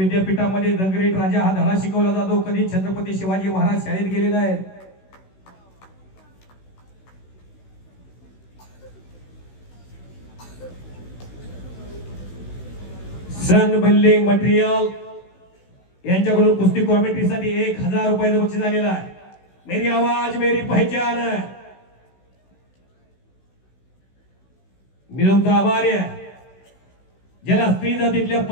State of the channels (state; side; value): late; right; 16 ms